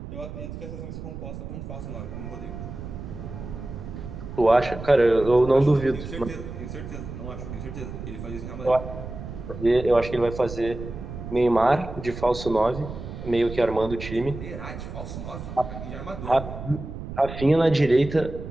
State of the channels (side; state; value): right; noise; rumble, 9 dB below the sound